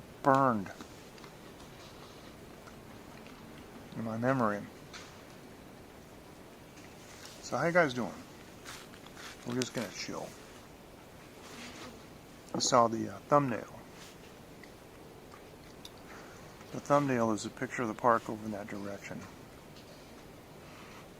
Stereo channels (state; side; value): identical; both; correlation 1.00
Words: burned in my memory. So how you guys doing? We're just gonna chill. You saw the thumbnail. The thumbnail is a picture of the park over in that direction.